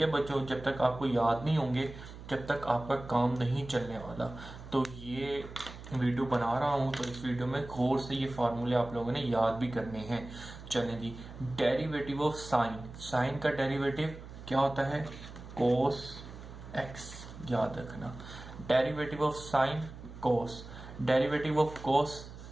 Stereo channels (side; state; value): right; noise; hum, 14 dB below the sound